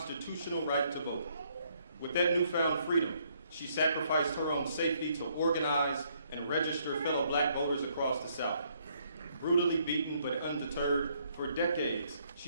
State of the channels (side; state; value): both; inverted; correlation -0.69